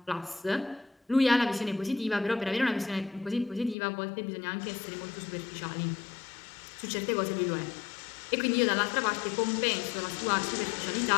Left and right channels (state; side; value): drops out; right; at 3.8 s